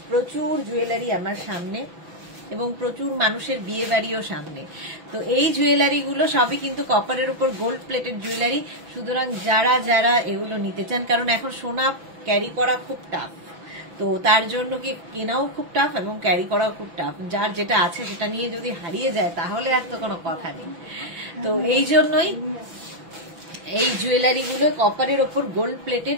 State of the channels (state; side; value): late; left; 6.1 ms